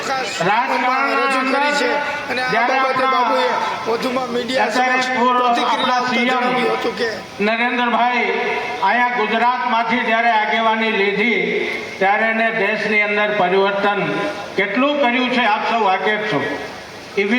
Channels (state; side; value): identical; both; correlation 1.00